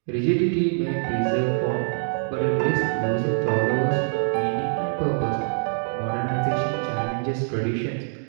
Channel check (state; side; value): silent; left; digital silence